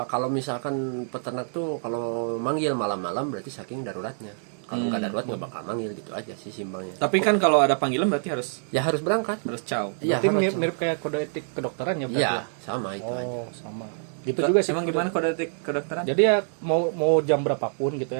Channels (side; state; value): left; silent; digital silence